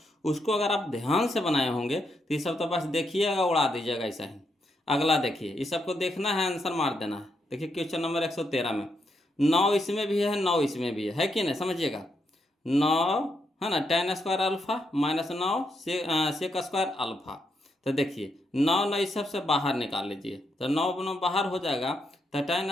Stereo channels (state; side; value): normal; both; correlation 0.80